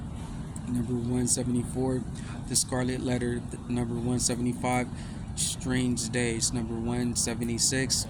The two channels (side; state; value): both; identical; correlation 1.00